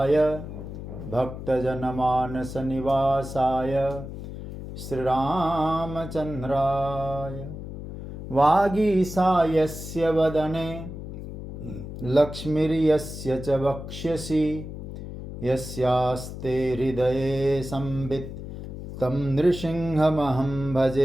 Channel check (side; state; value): left; noise; hum, 9 dB below the sound